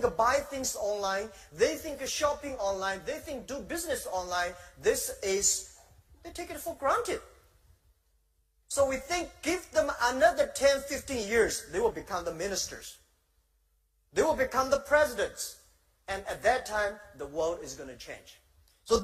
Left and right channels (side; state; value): both; identical; correlation 1.00